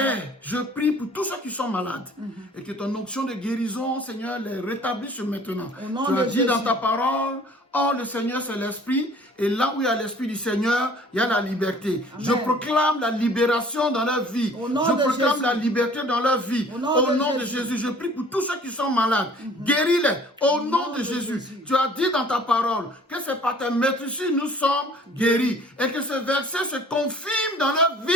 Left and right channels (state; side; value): normal; both; correlation 0.52